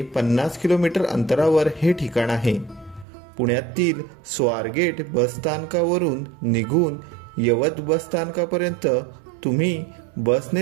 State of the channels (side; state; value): left; drops out; at 3.1 s